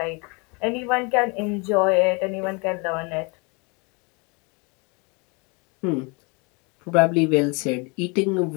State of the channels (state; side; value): quieter; right; 30.8 dB